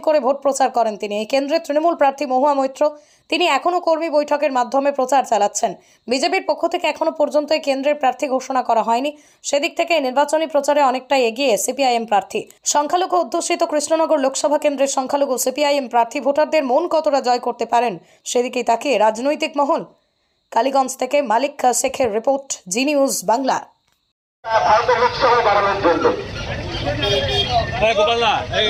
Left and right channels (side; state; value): both; identical; correlation 1.00